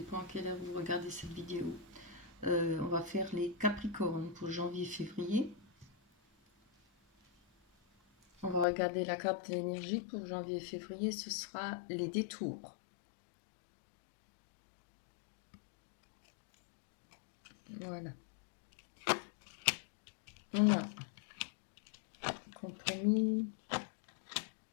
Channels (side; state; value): right; drops out; at 8.7 s